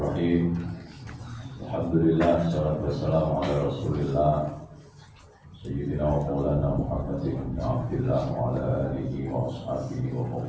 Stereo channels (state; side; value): identical; both; correlation 1.00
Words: Alhamdulillah, salatu wassalamu ala Rasulillah Sayyidina wa maulana Muhammadin ibn Abdillah wa ala alihi wa ashabihi wa